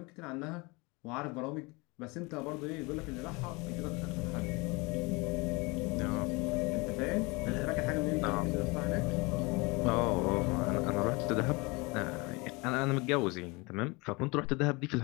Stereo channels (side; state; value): right; quieter; 26.4 dB